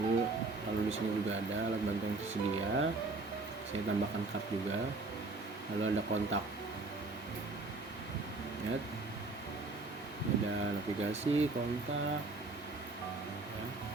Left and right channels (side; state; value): left; quieter; 3.5 dB